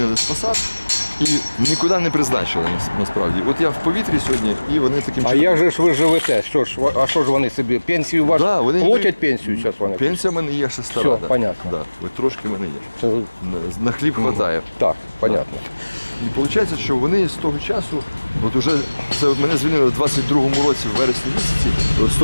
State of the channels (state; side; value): inverted; both; correlation -1.00